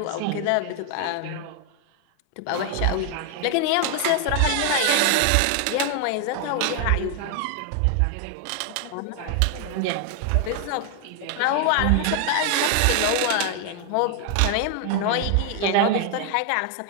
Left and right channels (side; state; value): both; different; correlation 0.00